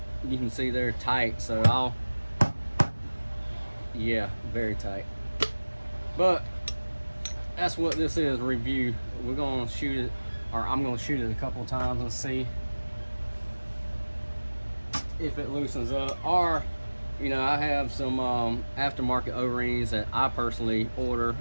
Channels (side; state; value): both; inverted; correlation -1.00